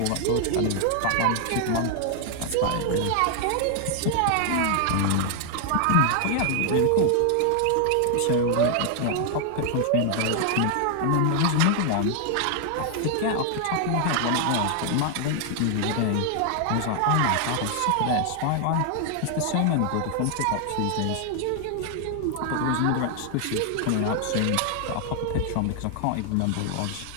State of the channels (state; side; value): different; both; correlation 0.00